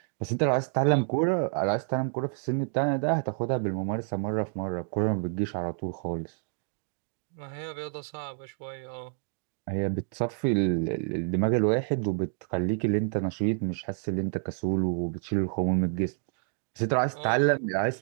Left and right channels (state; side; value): silent; left; 59 dB below the other